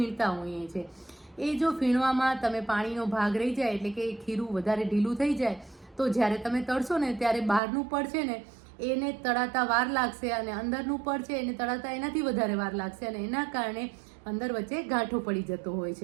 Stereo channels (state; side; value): drops out; left; at 7.6 s